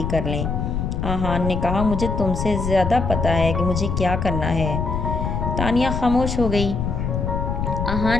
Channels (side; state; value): left; noise; rumble, 2 dB below the sound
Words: کر لیں۔ آہان نے کہا مجھے تم سے زیادہ پتہ ہے کہ مجھے کیا کرنا ہے۔ تانیہ خاموش ہو گئی۔